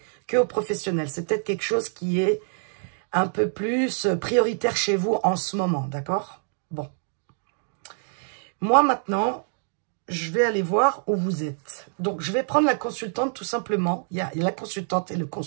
que au professionnel. C'est peut-être quelque chose qui est un peu plus prioritaire chez vous en ce moment, d'accord? Bon. Moi, maintenant... je vais aller voir où vous êtes. Donc, je vais prendre la consultante tout simplement. Il y a la consultante et le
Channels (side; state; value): left; silent; digital silence